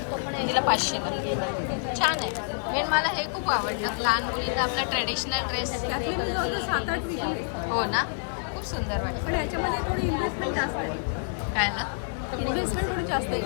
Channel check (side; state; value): right; silent; 60 dB below the other